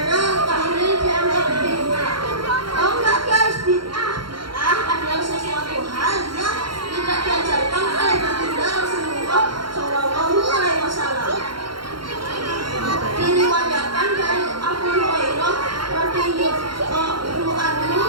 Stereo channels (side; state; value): left; late; 0.73 ms